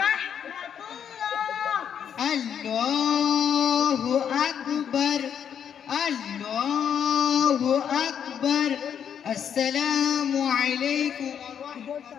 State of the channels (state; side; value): quieter; right; 8.4 dB